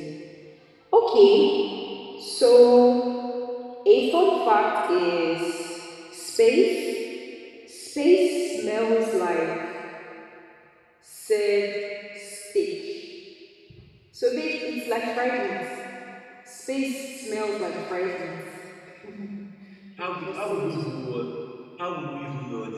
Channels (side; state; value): both; identical; correlation 1.00